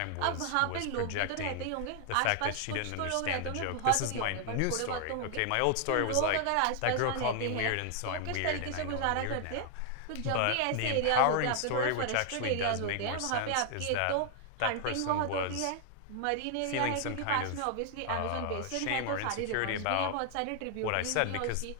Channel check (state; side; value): different; both; correlation 0.00